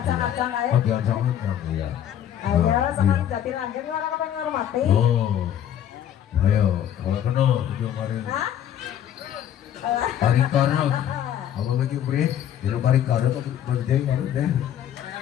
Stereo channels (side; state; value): right; quieter; 10.3 dB